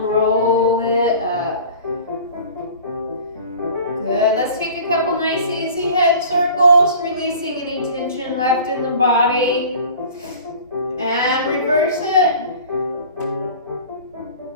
roll it up. Good. Let's take a couple nice easy head circles, releasing any tension left in the body. And reverse it.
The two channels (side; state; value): both; inverted; correlation -0.43